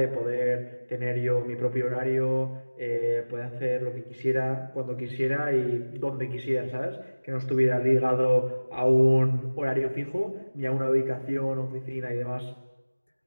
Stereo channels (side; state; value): both; inverted; correlation -1.00